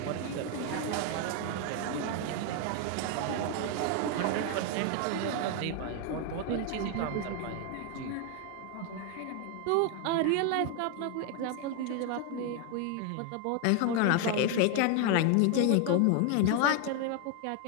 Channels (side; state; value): both; different; correlation 0.01